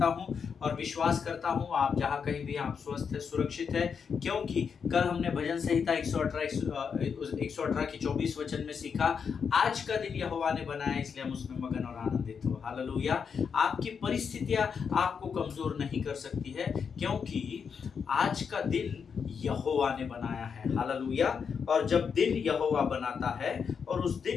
हूं और विश्वास करता हूं आप जहां कहीं भी आप स्वस्थ है, सुरक्षित है, क्योंकि कल हमने भजन संहिता 118 की 24 वचन में सीखा, आज का दिन यहोवा ने बनाया इसलिए हम उसमें मगन और आनंदित हो। हालेलुया। आपकी परिस्थितियां आपको कमजोर नहीं कर सकती है, क्योंकि आज का दिन यहोवा ने बनाया है। हालेलुया। और जब दिन यहोवा बनाता है और उस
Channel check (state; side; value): quieter; right; 6.4 dB